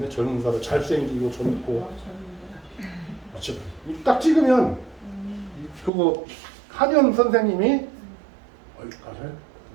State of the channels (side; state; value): left; drops out; at 5.9 s